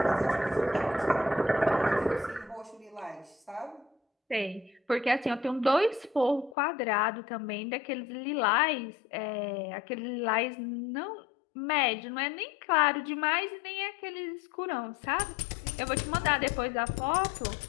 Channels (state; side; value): drops out; right; at 6.6 s